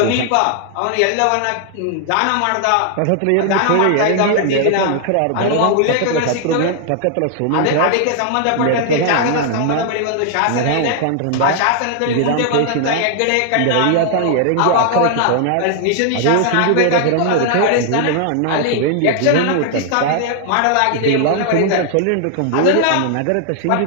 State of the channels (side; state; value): both; different; correlation 0.00